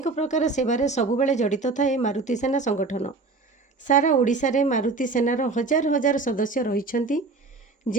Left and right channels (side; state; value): left; quieter; 3.9 dB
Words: प्रकार सेवारे सबुबेले जड़ित थाए मारुति सेना संगठन। सारा ओडिशा रे मारुति सेनार हजार हजार सदस्य रहिछंती,